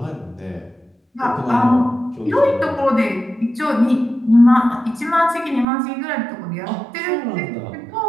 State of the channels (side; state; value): left; drops out; at 5.7 s